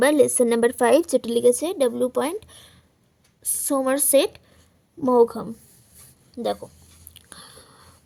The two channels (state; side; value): identical; both; correlation 1.00